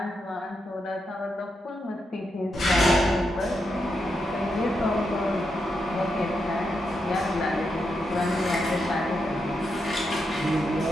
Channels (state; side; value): normal; both; correlation 0.84